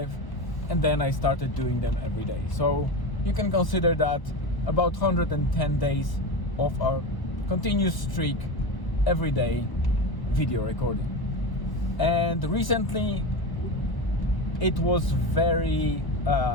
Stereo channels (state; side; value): late; right; 1.1 ms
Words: and then I started doing them every day. So you can consider that about 110 days of a continuous streak every day video recording. And recently it was very